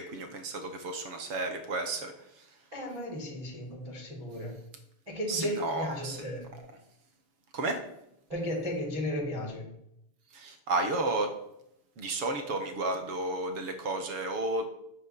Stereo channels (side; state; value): left; late; 7.1 ms